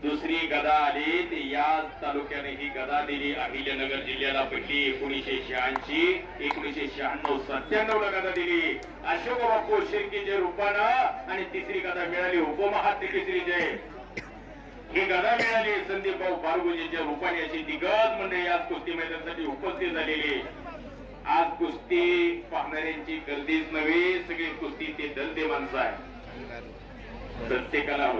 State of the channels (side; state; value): both; identical; correlation 1.00